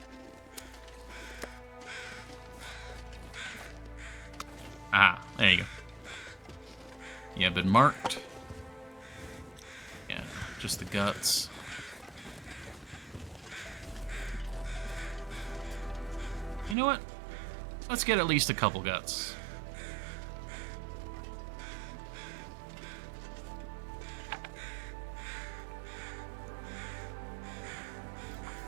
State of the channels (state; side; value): drops out; left; at 16.8 s